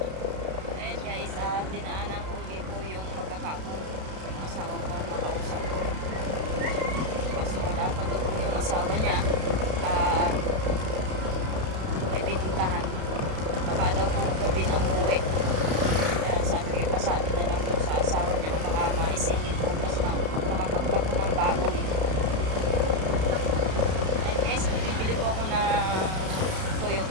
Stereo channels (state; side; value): late; left; 32 ms